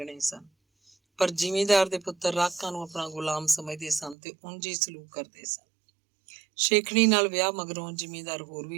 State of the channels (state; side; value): drops out; left; at 4.2 s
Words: ਸਨ। ਪਰ ਜ਼ਿਮੀਂਦਾਰ ਦੇ ਪੁੱਤਰ ਰਾਕਾਂ ਨੂੰ ਆਪਣਾ ਗੁਲਾਮ ਸਮਝਦੇ ਸਨ ਤੇ ਉਂਝ ਹੀ ਸਲੂਕ ਕਰਦੇ ਸਨ। ਸ਼ੇਖਣੀ ਨਾਲ ਵਿਆਹ ਮਗਰੋਂ ਜ਼ਿਮੀਂਦਾਰ ਹੋਰ